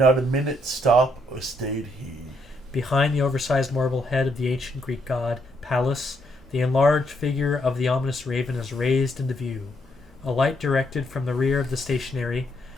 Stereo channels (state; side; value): normal; both; correlation 0.74